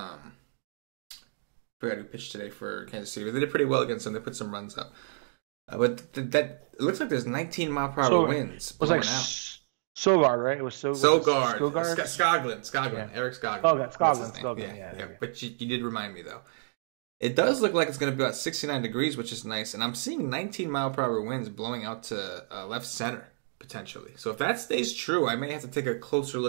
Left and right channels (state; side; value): silent; left; digital silence